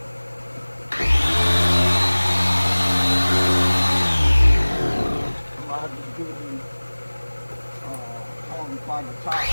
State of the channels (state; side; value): inverted; both; correlation -1.00